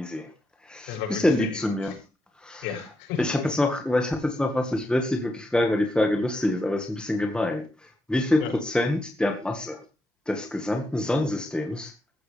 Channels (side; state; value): both; normal; correlation 0.82